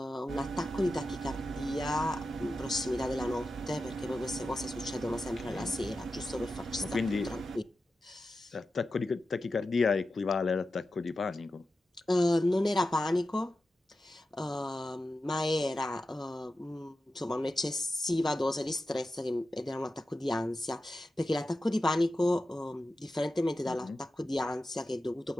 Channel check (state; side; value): normal; both; correlation 0.92